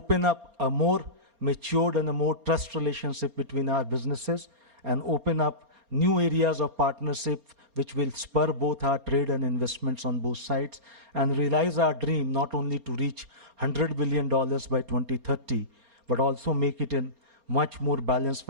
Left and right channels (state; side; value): late; left; 4.3 ms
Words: up a more matured and a more trust relationship between our businesses, and open up new areas of partnership which will spur both our trade and investments on both sides, and realize our dream not only to reach $100 billion by 2030, but also make it in much more balanced